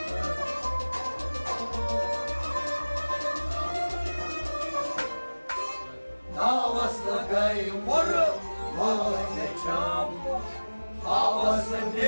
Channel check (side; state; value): both; inverted; correlation -1.00